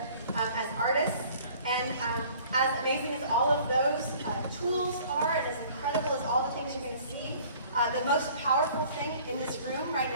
as artists. And as amazing as all of those tools are, and as incredible as all the things you're going to see, the most powerful thing in this room right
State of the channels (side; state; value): both; inverted; correlation -0.52